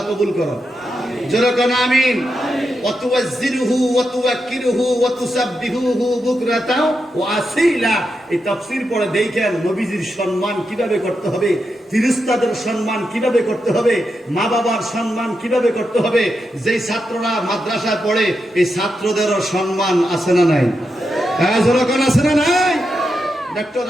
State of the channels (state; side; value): normal; both; correlation 0.86